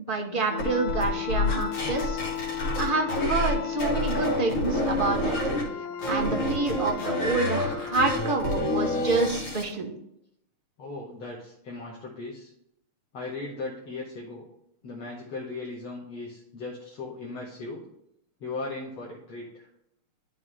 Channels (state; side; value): late; right; 6.5 ms